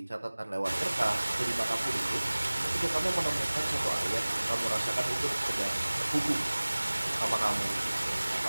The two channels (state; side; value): inverted; both; correlation -1.00